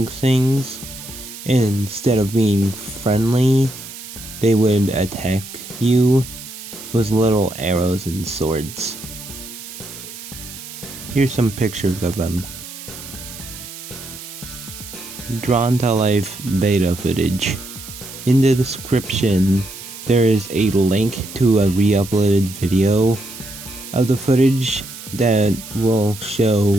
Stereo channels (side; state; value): right; noise; hiss, 13 dB below the sound